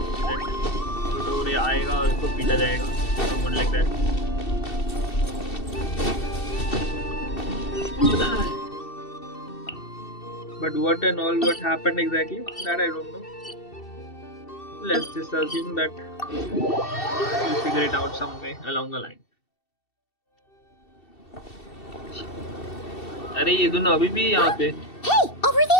Tutorial आएगा और उसको पीटा जाएगा, someone like that. But what and all what happened exactly, that I don't know. Let's just assume that we'll figure it out some way along the line. अरे ये दोनों अभी भी यहाँ पे. hey, over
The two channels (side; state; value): right; late; 2.7 ms